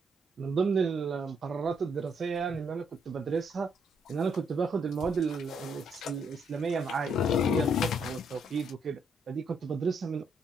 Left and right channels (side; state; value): both; normal; correlation 0.73